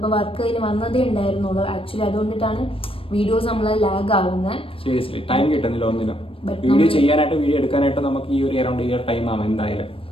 വർക്ക് കഴിഞ്ഞ് വന്നതേ ഉണ്ടായിരുന്നുള്ളൂ. ആക്ച്വലി അതുകൊണ്ടിട്ടാണ് വീഡിയോസ് നമ്മളെ ലാഗ് ആവുന്നത്. സീരിയസ്ലി ടൈം കിട്ടുന്നില്ല ഒന്നിനും. വീഡിയോ ചെയ്യാനായിട്ട് വീഡിയോ എടുക്കാനായിട്ട് നമുക്ക് ഈ ഒരു അറൗണ്ട് ഇയർ ടൈം ആവും എന്തായാലും.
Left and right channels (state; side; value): late; right; 0.26 ms